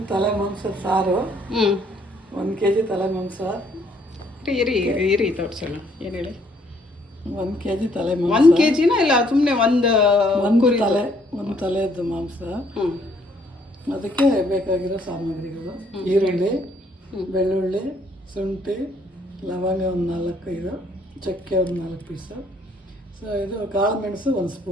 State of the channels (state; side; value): normal; both; correlation 0.66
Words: ತಲೆ ಮಾಂಸ ಸಾರು. 1 kg ತಲೆ ಮಾಂಸ. ಇರಿ ಇರಿ ತೋರಿಸೋಣ. ಏನು ಹೇಳಿ? 1 kg ತಲೆ ಮಾಂಸ. 1 kgನ ಇಲ್ಲ, ಸುಮ್ಮನೆ ಒಂದು ತಲೆದ್ದು ಮಾಂಸ. ಅದಕ್ಕೆ ಬೇಕಾಗಿರೋ ಸಾಮಗ್ರಿಗಳು: ಈರುಳ್ಳಿ, ಬೆಳ್ಳುಳ್ಳಿ, ಶುಂಠಿ, ಲವಂಗ ಒಂದು 4-5, ಚಕ್ಕೆ ಒಂದು 4 ಪೀಸು. ಸೊ ಇದು ಕಾಳು ಮೆಣಸು 1